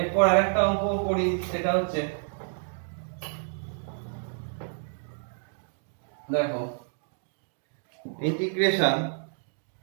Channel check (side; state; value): left; silent; digital silence